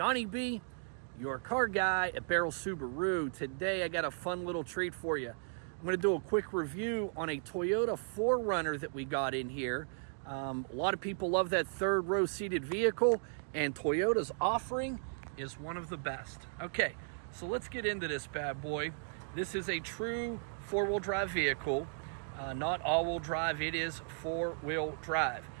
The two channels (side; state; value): left; silent; digital silence